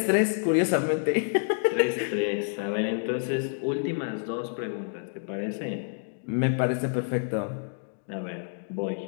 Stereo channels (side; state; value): right; silent; digital silence